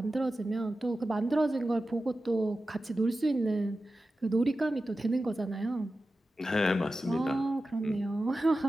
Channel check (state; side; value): normal; both; correlation 0.93